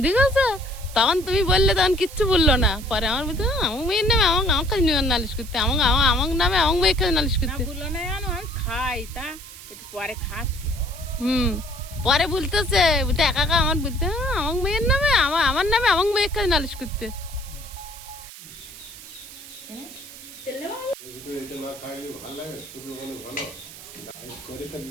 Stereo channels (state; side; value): noise; right; hiss, 16 dB below the sound